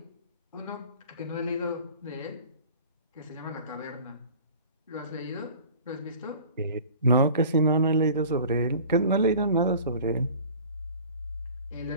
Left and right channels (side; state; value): both; inverted; correlation -0.44